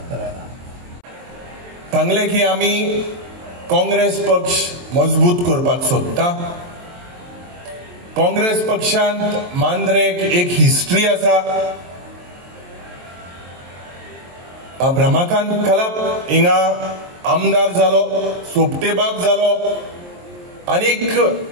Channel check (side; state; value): left; late; 23 ms